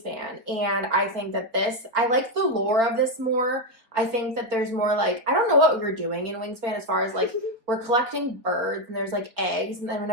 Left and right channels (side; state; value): left; late; 4.4 ms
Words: and I think that I like the lore of this more. I think that there's more like, I don't know what we were doing in Wingspan as far as like, we're collecting birds and there's like eggs, and then